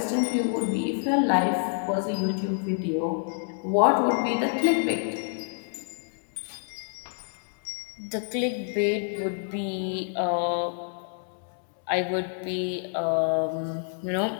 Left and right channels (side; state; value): right; silent; digital silence